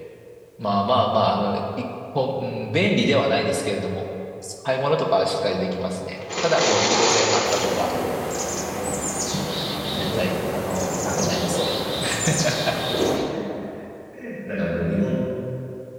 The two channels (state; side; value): identical; both; correlation 1.00